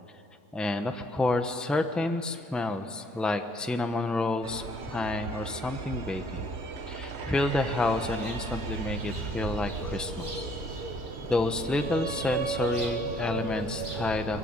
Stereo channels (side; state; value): both; normal; correlation 0.64